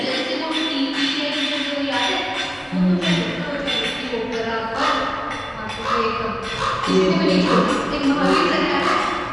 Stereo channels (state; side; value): identical; both; correlation 1.00